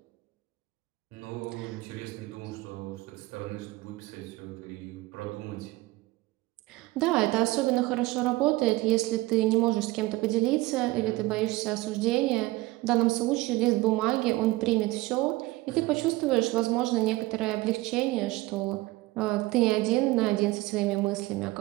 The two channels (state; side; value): quieter; left; 19.9 dB